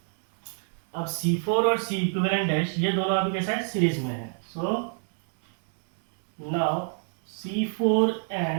अब C4 और सी इक्विवेलेंट डैश ये दोनों अभी कैसा है, सीरीज में है। So now C4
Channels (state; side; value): silent; left; digital silence